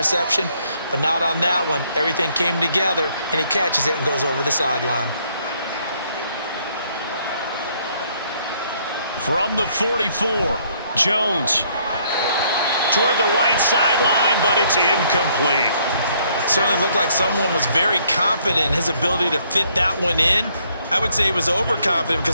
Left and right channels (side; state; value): both; inverted; correlation -0.67